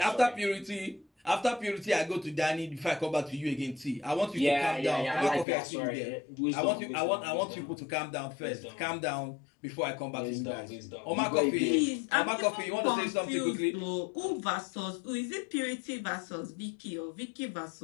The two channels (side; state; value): right; drops out; at 5.5 s